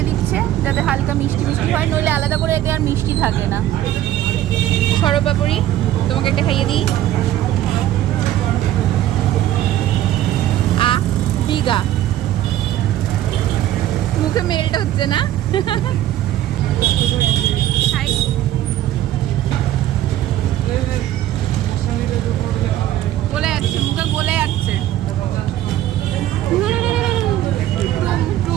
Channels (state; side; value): quieter; left; 13.1 dB